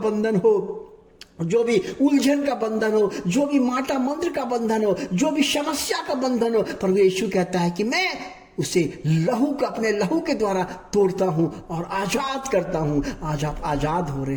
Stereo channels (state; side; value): identical; both; correlation 1.00